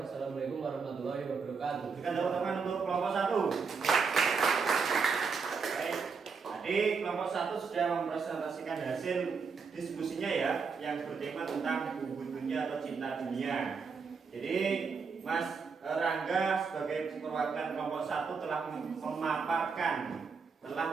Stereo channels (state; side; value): quieter; left; 5.3 dB